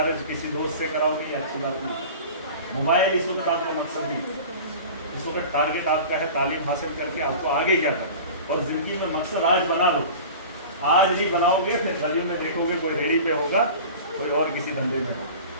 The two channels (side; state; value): both; inverted; correlation -0.37